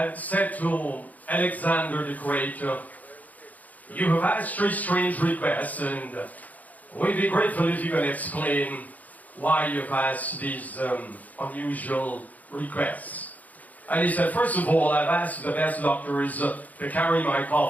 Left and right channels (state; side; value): late; right; 0.078 ms